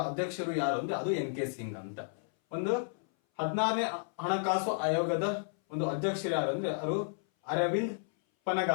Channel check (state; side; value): silent; right; 56 dB below the other